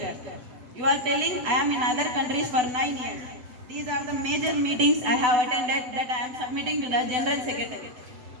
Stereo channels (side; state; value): left; late; 8.0 ms